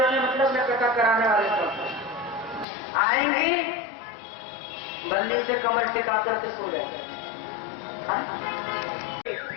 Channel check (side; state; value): right; drops out; at 2.7 s